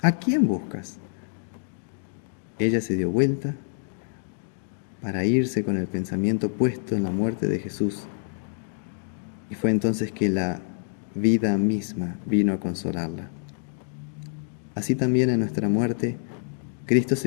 ¿A quién buscas?». Ella se dio vuelta para irse con el pensamiento puesto en la muerte de Jesús. Y fue entonces que la vida misma vino a consolarla. Así también en nuestra muerte, Cristo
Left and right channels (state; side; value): silent; right; digital silence